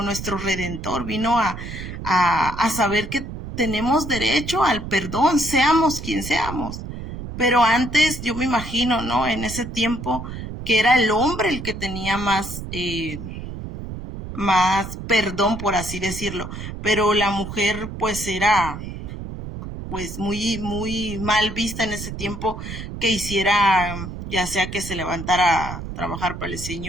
nuestro redentor, vino a saber que tenemos derecho al perdón, seamos quien seamos. Pero antes, yo me imagino, ¿no? En ese tiempo, que era el hombre el que tenía más perdón, por así decirlo. Pero la mujer, pues, era pues muy mal vista en ese tiempo que hiciera, ya sea que se levantara a trabajar para el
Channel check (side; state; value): right; noise; rumble, 8 dB below the sound